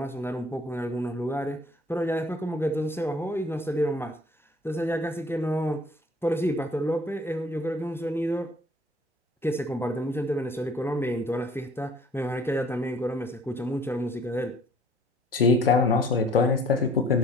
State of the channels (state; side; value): normal; both; correlation 0.54